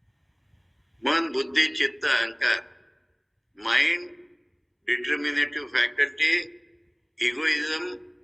man, buddhi, chitta, ahankar, mind, determinative faculty, egoism,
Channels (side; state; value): both; identical; correlation 1.00